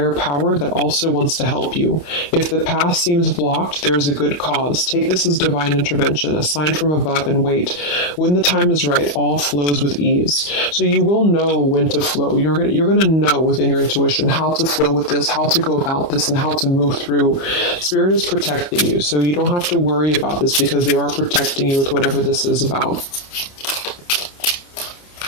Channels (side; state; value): right; late; 29 ms